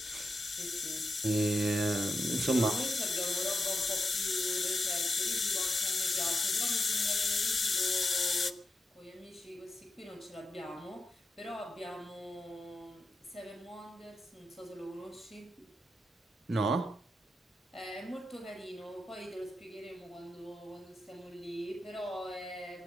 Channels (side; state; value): both; normal; correlation 0.88